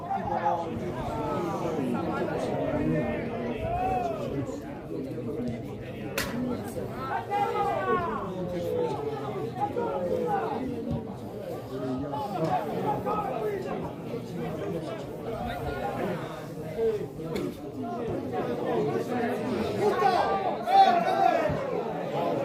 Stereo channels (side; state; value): both; identical; correlation 1.00